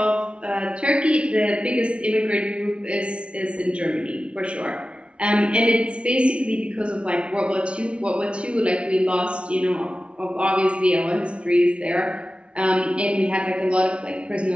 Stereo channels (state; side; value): late; left; 0.059 ms